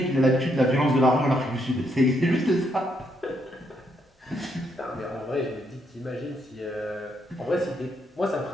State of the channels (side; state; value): both; normal; correlation 0.76